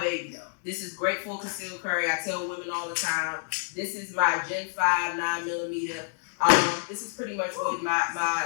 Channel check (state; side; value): silent; right; digital silence